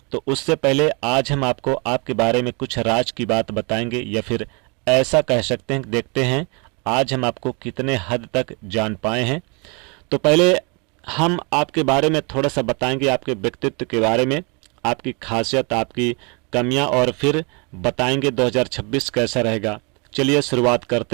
तो उससे पहले आज हम आपको आपके बारे में कुछ राज की बात बताएंगे, या फिर ऐसा कह सकते हैं, देखते हैं आज हम आपको कितने हद तक जान पाए हैं। तो पहले हम आपके बारे में थोड़ा सा बताएंगे, आपके व्यक्तित्व के बारे में, आपकी खासियत, आपकी कमियां, और फिर बताएंगे 2026 कैसा रहेगा। चलिए शुरुआत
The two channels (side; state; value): left; quieter; 32.1 dB